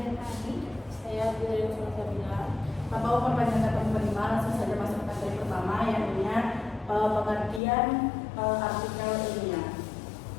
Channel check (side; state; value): right; drops out; at 7.6 s